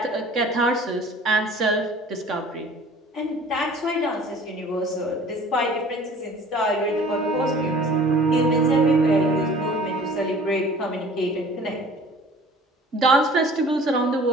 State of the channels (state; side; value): normal; both; correlation 0.48